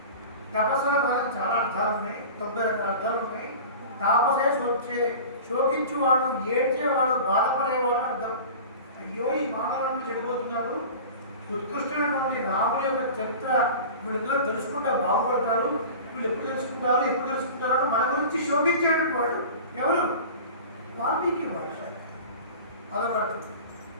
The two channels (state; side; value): inverted; both; correlation -0.37